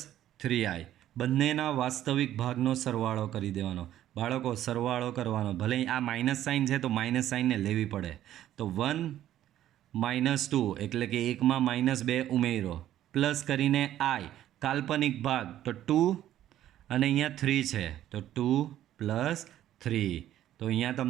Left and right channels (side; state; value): left; quieter; 12.4 dB